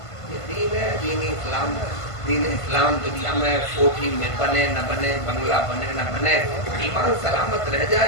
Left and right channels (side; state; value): right; late; 1.5 ms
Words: یہ دین ہے، دین اسلام. دین اسلام دنیا میں کوٹھی میں بنے نہ بنے، بنگلہ بنے نہ بنے، ایمان سلامت رہ